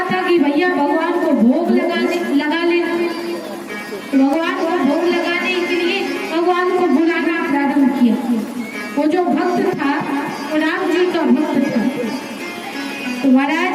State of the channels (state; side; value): identical; both; correlation 1.00